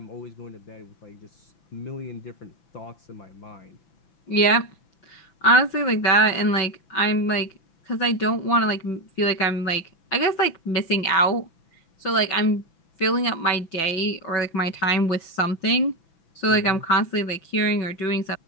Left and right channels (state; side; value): late; right; 6.0 ms